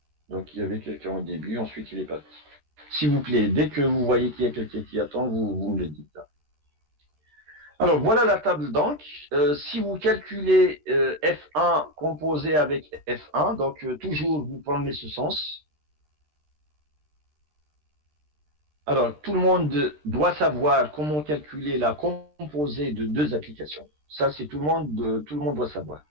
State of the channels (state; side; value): late; left; 13 ms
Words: Donc, il y avait quelqu'un au début, ensuite il est parti. S'il vous plaît, dès que vous voyez qu'il y a quelqu'un qui attend, vous me le dites. Alors, voilà la table donc. Si vous calculez F1 composé avec F1, donc toujours vous prenez ce sens. Alors, tout le monde doit savoir comment calculer la composée de deux applications. Ça, c'est tout le monde doit savoir.